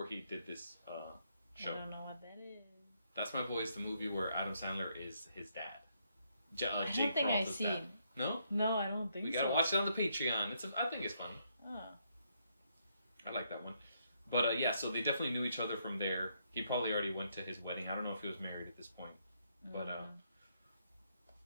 he did this show. I don't know what that is. That's My Boy is the movie where Adam Sandler is his dad. I don't Jake think I've Peralta's seen. dad. No? No, I don't think so. We gotta watch it on the Patreon. I think it's funny. Oh. I like that one. But yeah, so they definitely knew each other from there. He probably already went to his wedding. I don't know if he was married at this point. But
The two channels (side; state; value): both; inverted; correlation -0.75